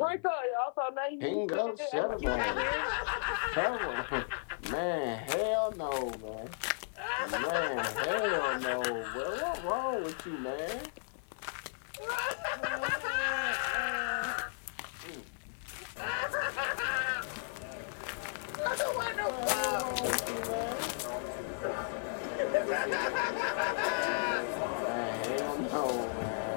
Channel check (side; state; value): right; silent; digital silence